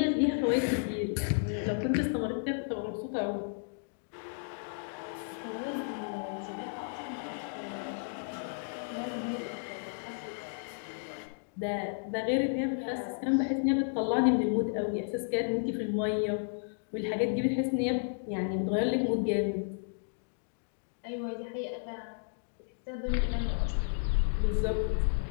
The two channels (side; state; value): right; silent; digital silence